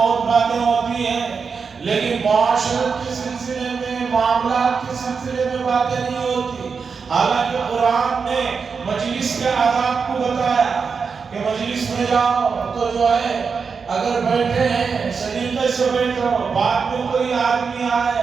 باتیں ہوتی ہیں، لیکن معاشرت کے سلسلے میں، معاملات کے سلسلے میں باتیں نہیں ہوتی۔ حالانکہ قرآن نے مجلس کے آداب کو بتایا کہ مجلس میں جاؤ تو جو ہے اگر بیٹھے ہیں سلیقے سے بیٹھو، بعد میں کوئی آدمی آئے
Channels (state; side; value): quieter; left; 5.5 dB